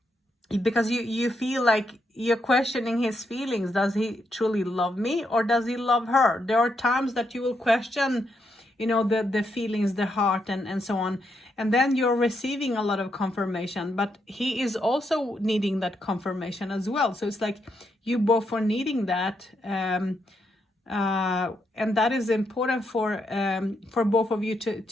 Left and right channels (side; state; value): both; normal; correlation 0.80